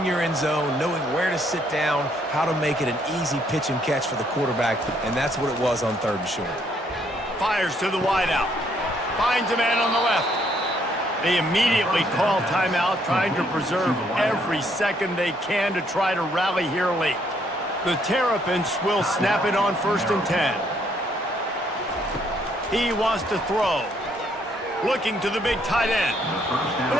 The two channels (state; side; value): normal; both; correlation 0.69